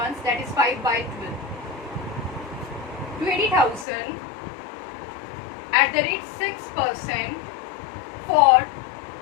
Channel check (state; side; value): drops out; right; at 3.9 s